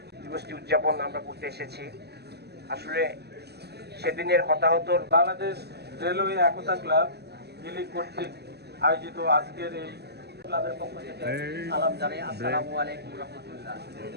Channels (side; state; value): left; late; 0.48 ms